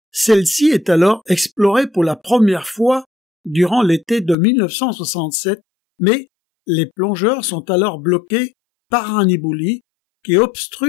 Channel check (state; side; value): drops out; right; at 4.4 s